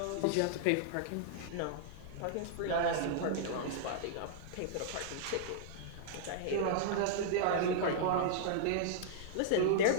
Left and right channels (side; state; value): both; different; correlation -0.02